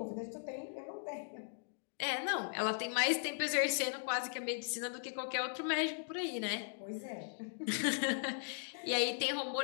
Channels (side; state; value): right; silent; digital silence